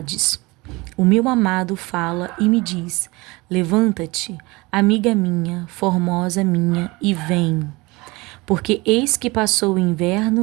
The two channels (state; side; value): quieter; left; 23.5 dB